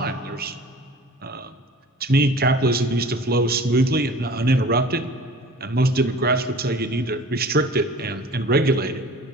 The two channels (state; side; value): normal; both; correlation 0.44